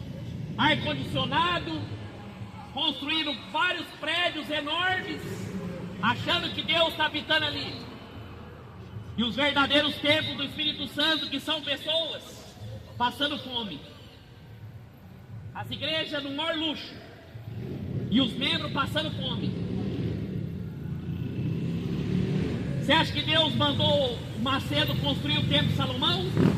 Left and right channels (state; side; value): identical; both; correlation 1.00